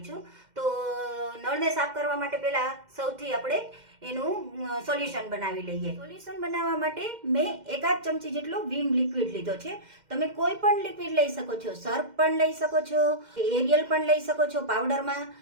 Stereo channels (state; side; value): late; left; 2.1 ms